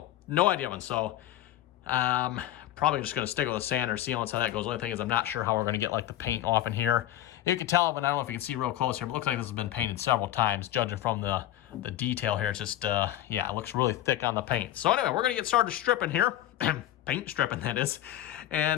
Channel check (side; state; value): right; quieter; 13.4 dB